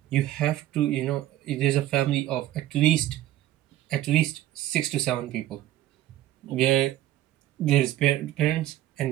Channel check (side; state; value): left; quieter; 14.0 dB